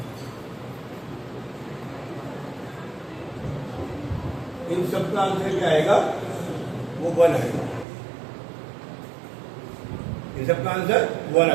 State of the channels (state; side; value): drops out; left; at 7.9 s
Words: इन सबका आंसर क्या आएगा, वो 1 आएगा। इन सबका आंसर 1